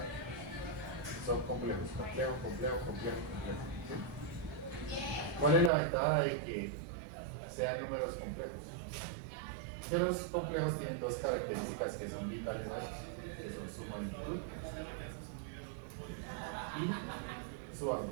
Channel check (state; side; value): drops out; left; at 5.7 s